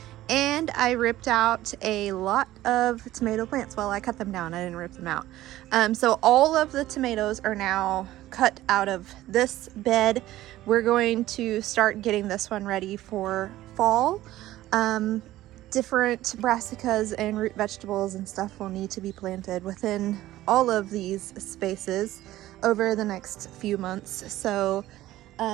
and I ripped out a lot of tomato plants. Well, I cut them down, I didn't rip them out. So all of the tomatoes are now cut out of this bed. We're going to start getting this one ready for fall. Different brassicas and root vegetables and stuff will need to be planted within all of these spaces over the next few months. So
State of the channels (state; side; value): quieter; left; 15.2 dB